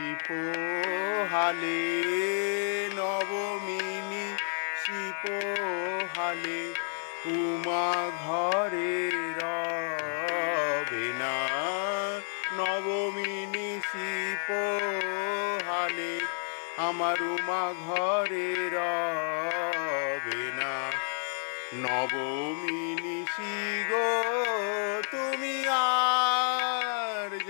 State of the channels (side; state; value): right; silent; digital silence